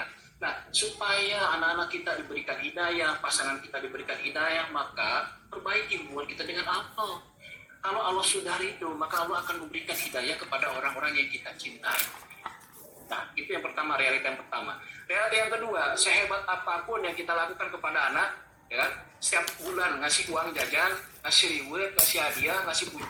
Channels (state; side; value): identical; both; correlation 1.00